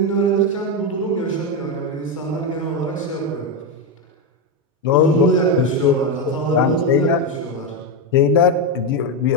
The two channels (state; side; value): normal; both; correlation 0.08